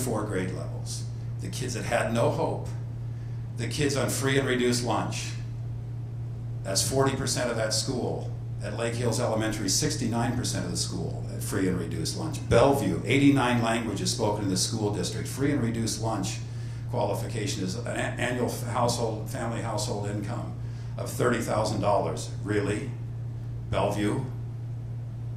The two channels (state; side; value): identical; both; correlation 1.00